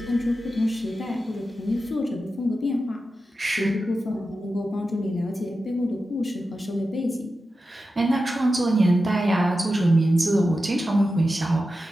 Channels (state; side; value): normal; both; correlation 0.91